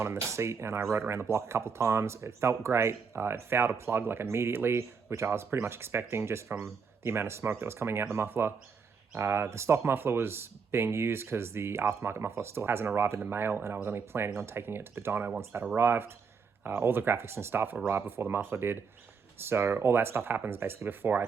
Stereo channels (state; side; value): quieter; left; 5.7 dB